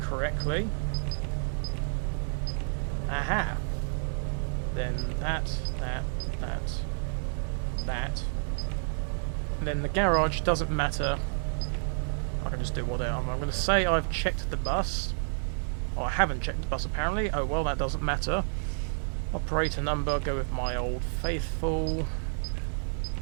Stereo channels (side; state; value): left; silent; 58 dB below the other